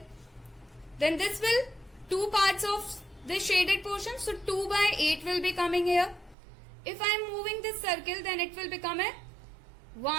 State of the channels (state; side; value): drops out; left; at 6.4 s